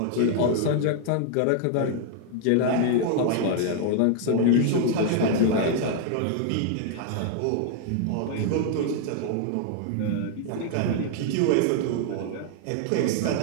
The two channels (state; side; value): different; both; correlation 0.00